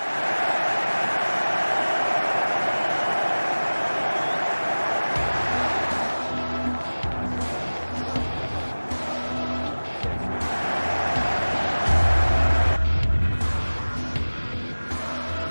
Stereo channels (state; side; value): inverted; both; correlation -1.00